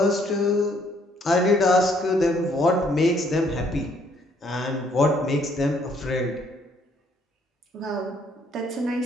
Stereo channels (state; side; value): normal; both; correlation 0.66